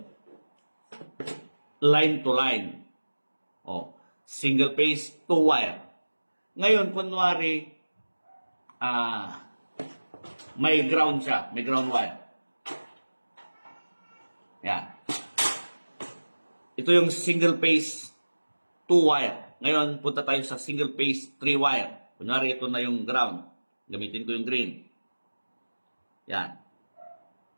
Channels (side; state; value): both; inverted; correlation -1.00